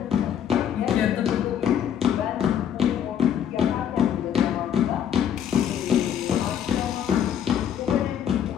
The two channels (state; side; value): quieter; right; 9.2 dB